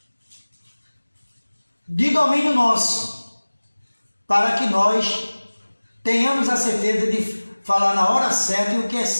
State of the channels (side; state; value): both; inverted; correlation -1.00